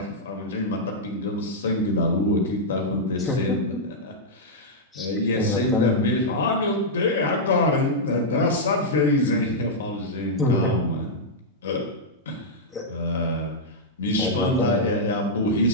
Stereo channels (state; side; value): normal; both; correlation -0.07